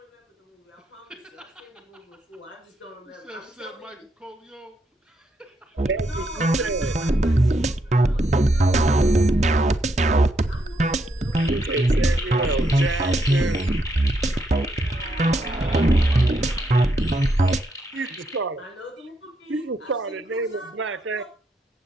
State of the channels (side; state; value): both; normal; correlation 0.78